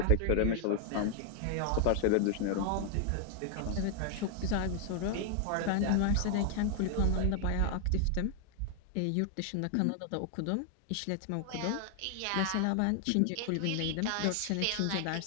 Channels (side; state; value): both; different; correlation 0.00